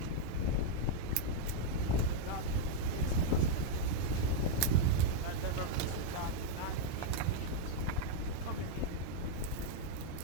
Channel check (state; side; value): different; both; correlation -0.01